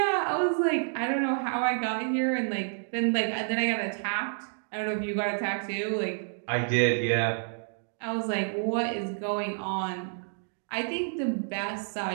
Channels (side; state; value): left; silent; digital silence